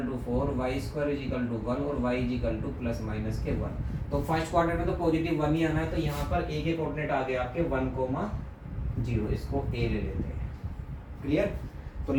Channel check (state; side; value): identical; both; correlation 1.00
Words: to 4, y square is equal to 1 और y is equal to plus minus के 1। तो फर्स्ट क्वाड्रेंट में तो पॉजिटिव 1 ही आना है, तो यहाँ पर a के कोऑर्डिनेट आ गए आपके 1,0, इसको a ले लेते हैं। क्लियर? तो